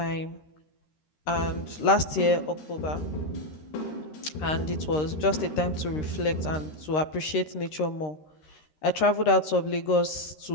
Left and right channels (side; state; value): right; late; 13 ms